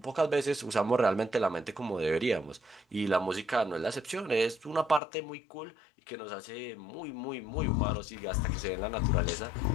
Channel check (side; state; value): right; drops out; at 5.0 s